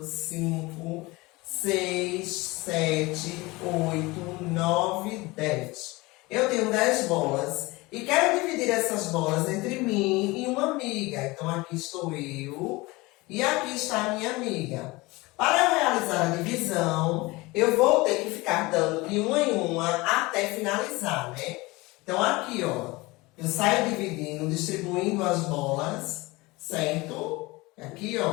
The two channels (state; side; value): quieter; right; 22.5 dB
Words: 5, 6, 7, 8, 9, 10. Eu tenho 10 bolas e quero dividir essas bolas entre mim e uma amiga. Então, aqui estou eu e aqui está a minha amiga. Para eu realizar a divisão, eu vou ter que ficar dando de uma em uma até finalizar, né? Então, aqui, ó, eu saio dividindo, distribuindo as bolas, certo? Aqui,